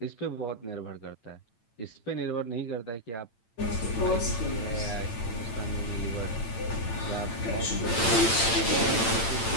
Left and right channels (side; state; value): right; late; 8.9 ms